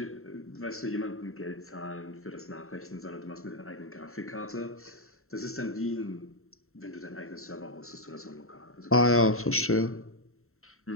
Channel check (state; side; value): late; right; 0.63 ms